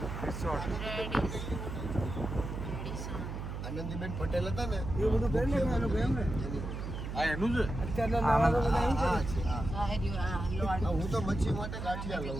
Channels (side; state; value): right; noise; hum, 6 dB below the sound